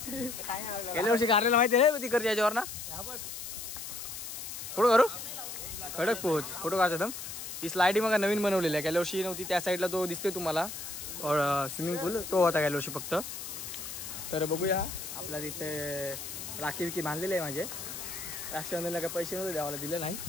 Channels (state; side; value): noise; left; hiss, 8 dB below the sound